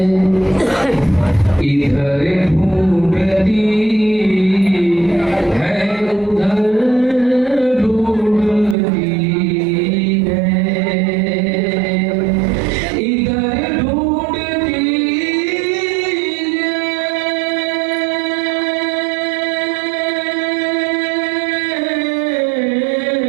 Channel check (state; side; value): drops out; left; at 8.8 s